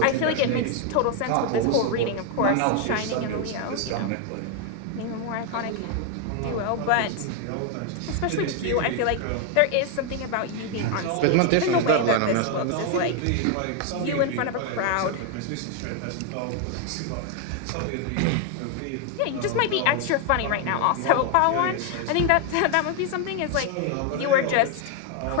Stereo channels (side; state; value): both; different; correlation 0.01